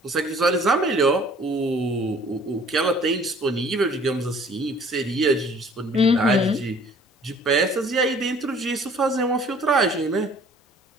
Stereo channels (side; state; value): both; normal; correlation 0.53